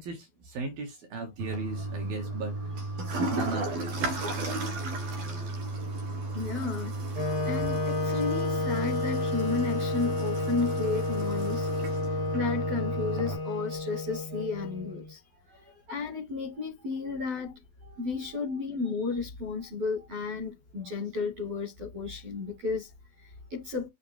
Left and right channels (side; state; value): left; late; 12 ms